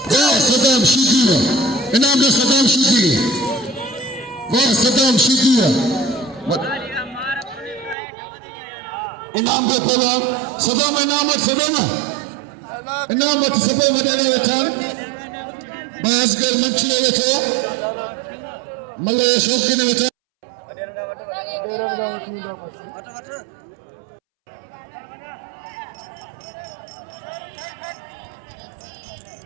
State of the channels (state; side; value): drops out; left; at 8.0 s